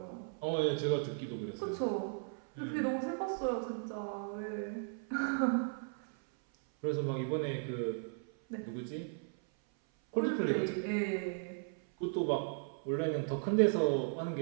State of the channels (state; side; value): silent; left; 54 dB below the other